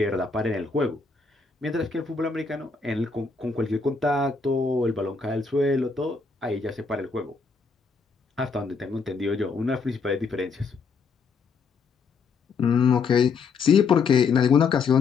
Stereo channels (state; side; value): quieter; right; 4.9 dB